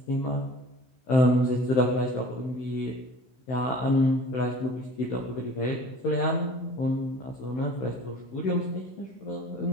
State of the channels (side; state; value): right; late; 16 ms